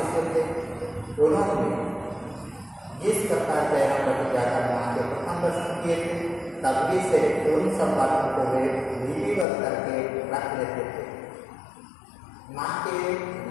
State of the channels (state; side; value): drops out; right; at 9.5 s